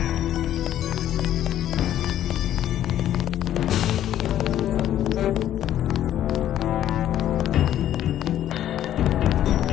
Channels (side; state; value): right; quieter; 11.6 dB